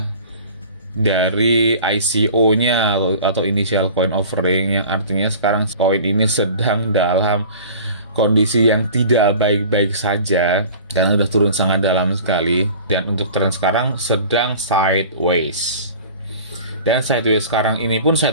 dari ICO-nya atau initial coin offering, yang artinya sekarang koin ini sedang dalam kondisi yang tidak baik-baik saja karena sudah turun sangat dalam sekali. Dan untuk tren sekarang sedang sideways. Dan sideways sekarang ini pun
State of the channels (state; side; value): inverted; both; correlation -0.42